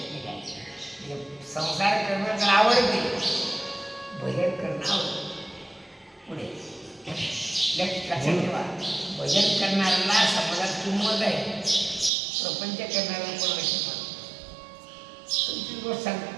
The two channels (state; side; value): drops out; left; at 12.1 s